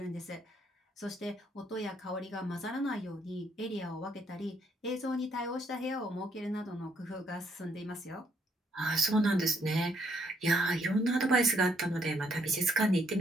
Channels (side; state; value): both; normal; correlation 0.71